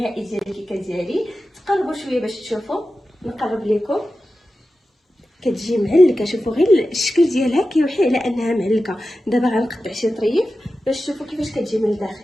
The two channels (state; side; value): normal; both; correlation 0.93